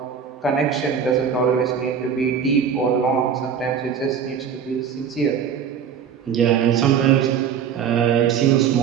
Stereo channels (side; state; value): left; quieter; 7.5 dB